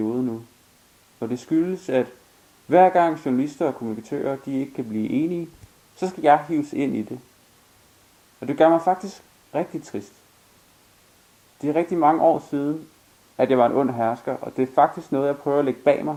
nu. Og det skyldes, at hver gang journalister og kommunikatører de ikke kan blive enige, så skal jeg hives ind i det. Og det gør mig faktisk rigtig trist. Det er rigtig mange år siden, at jeg var en ond hersker, og det er faktisk noget, jeg prøver at lægge bag mig.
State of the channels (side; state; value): both; identical; correlation 1.00